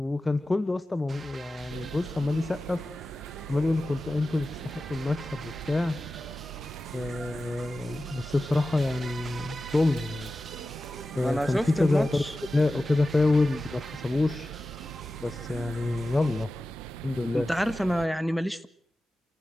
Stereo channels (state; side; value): normal; both; correlation 0.94